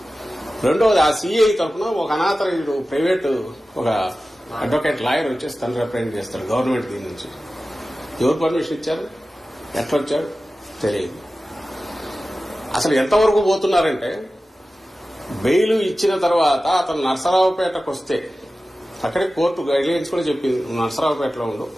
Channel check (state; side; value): normal; both; correlation 0.95